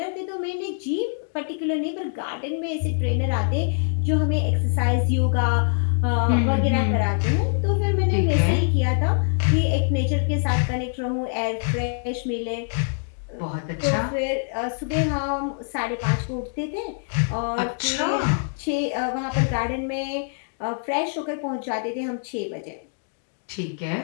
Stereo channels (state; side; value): silent; right; digital silence